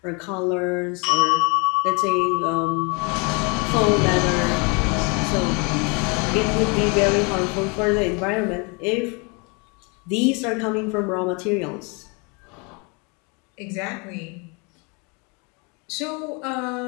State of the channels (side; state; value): right; quieter; 31.5 dB